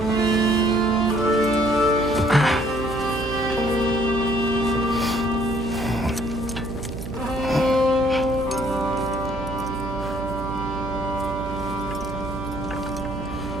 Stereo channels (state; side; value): noise; right; hum, 8 dB below the sound